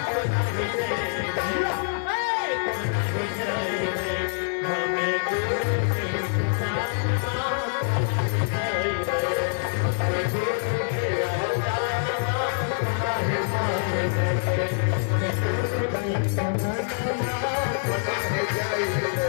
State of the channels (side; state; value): right; silent; digital silence